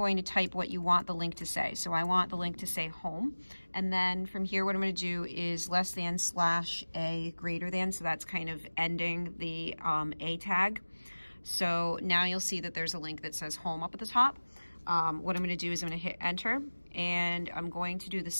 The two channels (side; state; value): both; inverted; correlation -1.00